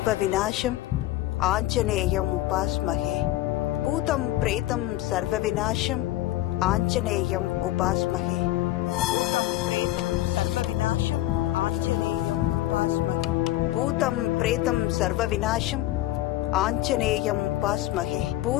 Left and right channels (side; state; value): right; quieter; 15.7 dB